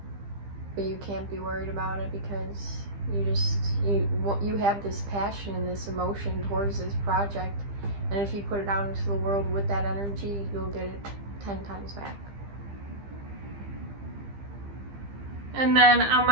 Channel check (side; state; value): left; late; 15 ms